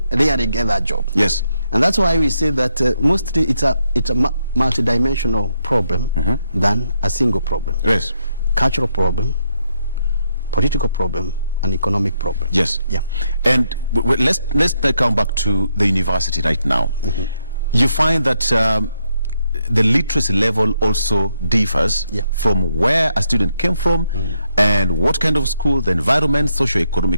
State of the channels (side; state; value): both; inverted; correlation -0.78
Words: rarely get that job. Yes. And that's why we say that mostly it's a multidimensional problem than a single problem. Yes. Cultural problem, political problem, and economic problem. Yes. Yeah. And let's come back to the university right now. You find that the literacy level also differs from where a student came from and what kind of school, the environment,